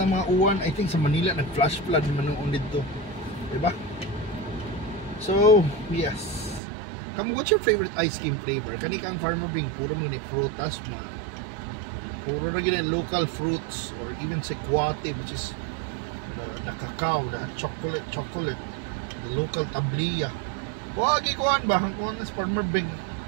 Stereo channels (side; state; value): left; drops out; at 6.6 s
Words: ng mga uwan. I think sa Manila, nag-flash flood naman noon dito. Diba? So, yes. What's your favorite ice cream flavor? Kani kang Farmer Bing, puro mo ni frutas na. Puro na gina local fruits or even sequate, which is the cacao, the chocolate, the local tabliya. Wagi kuan ba? Ang kuan is Farmer Bing.